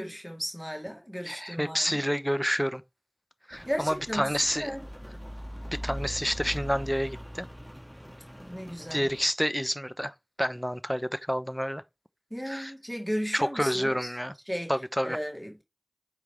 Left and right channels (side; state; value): both; identical; correlation 1.00